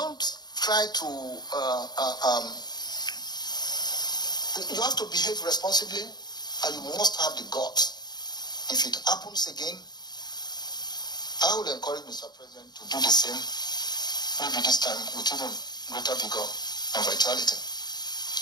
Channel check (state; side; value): late; right; 0.20 ms